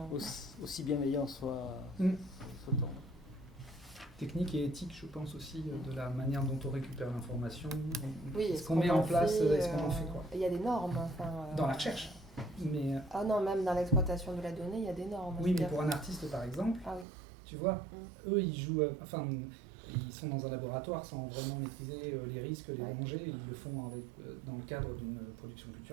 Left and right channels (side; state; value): left; drops out; at 17.1 s